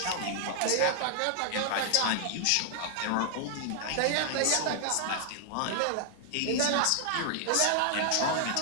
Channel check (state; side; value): different; both; correlation 0.00